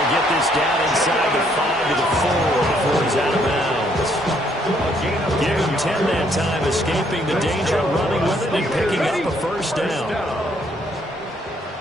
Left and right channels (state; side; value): normal; both; correlation 0.68